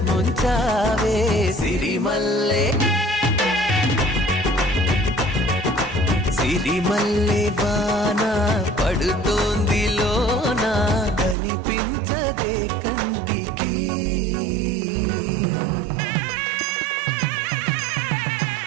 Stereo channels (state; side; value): drops out; left; at 11.4 s